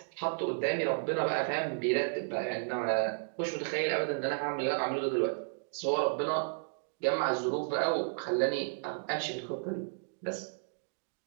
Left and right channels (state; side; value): silent; left; digital silence